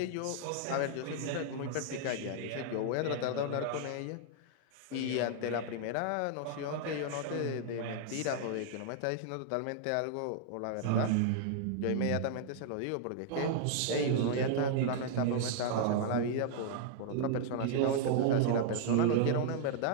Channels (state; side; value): different; both; correlation -0.01